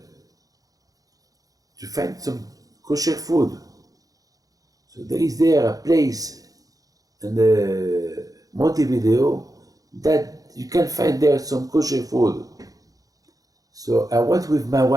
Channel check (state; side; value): late; left; 0.17 ms